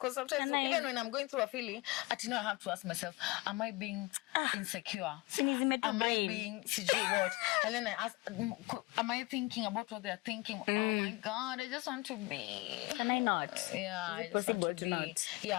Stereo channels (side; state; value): right; quieter; 23.2 dB